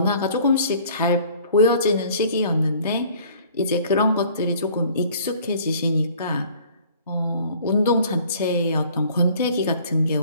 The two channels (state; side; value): inverted; both; correlation -0.53